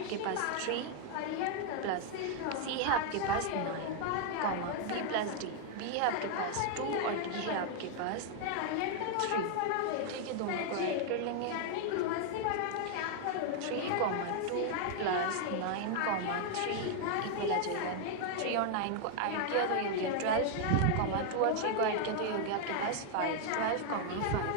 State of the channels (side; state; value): both; different; correlation 0.00